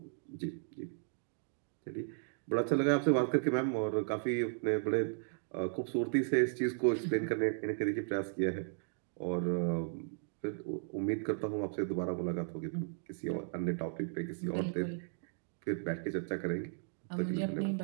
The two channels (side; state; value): left; silent; digital silence